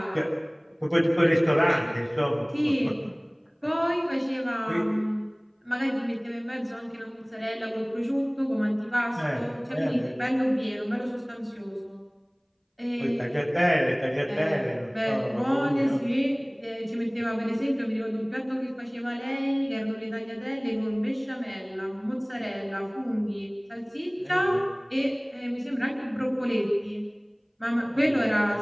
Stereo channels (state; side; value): identical; both; correlation 1.00